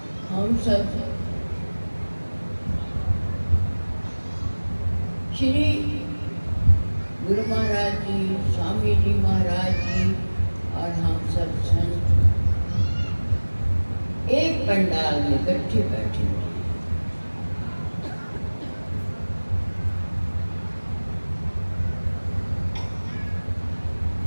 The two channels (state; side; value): inverted; both; correlation -1.00